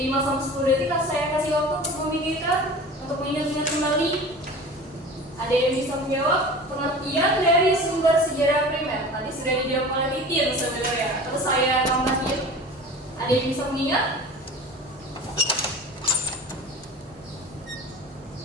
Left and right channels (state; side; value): normal; both; correlation 0.38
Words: sampai 10 detik saya kasih waktu untuk memikirkan, untuk mengingat-ingat kembali. Ada yang bisa menjawab pengertian dari sumber sejarah primer? Tadi sudah dijawab oleh Titin sebenarnya. Terus saya tambahin. Ada yang bisa mengingat?